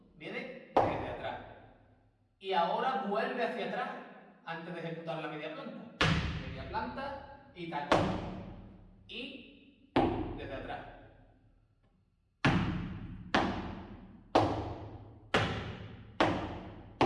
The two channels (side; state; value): both; identical; correlation 1.00